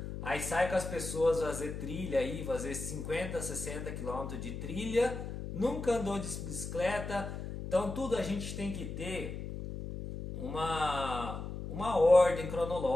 aí sai com as pessoas fazer trilha aí, fazer 50, 60 km de trilha, nunca andou de bicicleta. Então tudo a gente tem que ter uma ordem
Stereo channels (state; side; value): noise; left; hum, 7 dB below the sound